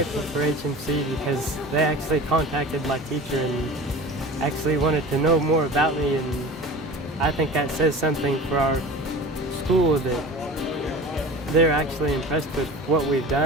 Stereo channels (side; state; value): both; normal; correlation 0.36